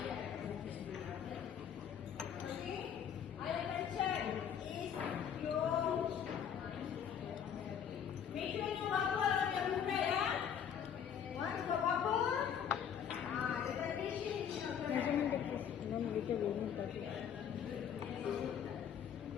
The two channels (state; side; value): quieter; right; 8.3 dB